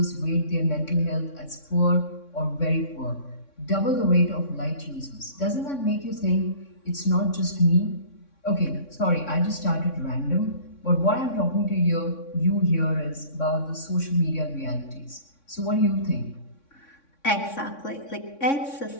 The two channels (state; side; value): late; right; 3.6 ms